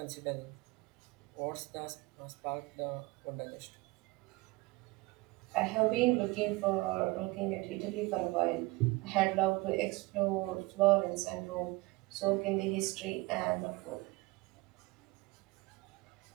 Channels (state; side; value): quieter; left; 22.9 dB